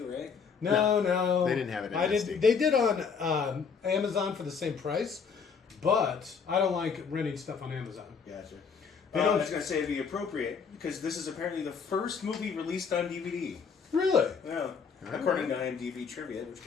right? No. They didn't have it in SD. They did on Amazon for the same price, but I don't like renting stuff on Amazon. Gotcha. They I don't- was going to say it'd be appropriate because this is apparently the first movie released on DVD. Really? Yeah. According to IMDb trivia, which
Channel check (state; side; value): quieter; right; 5.9 dB